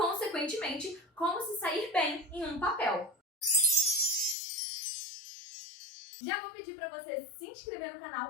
como se sair bem em um papel. Já vou pedir para você se inscrever no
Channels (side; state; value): right; drops out; at 4.4 s